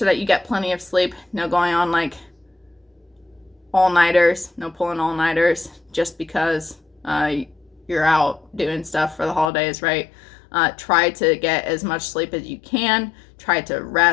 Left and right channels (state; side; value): drops out; right; at 9.5 s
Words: that you get plenty of sleep. No going on like all-nighters. No pulling all-nighters just because you're out doing stuff for the holidays, right? Try to get as much sleep as you can. Try to